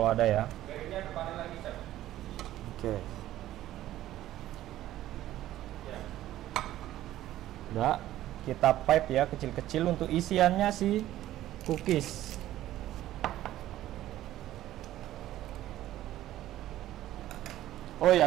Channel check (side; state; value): left; quieter; 13.9 dB